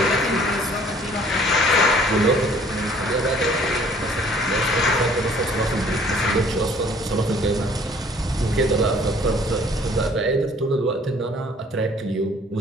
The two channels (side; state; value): both; normal; correlation 0.56